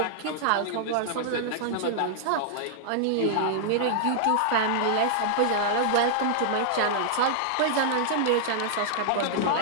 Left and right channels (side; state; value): both; different; correlation -0.01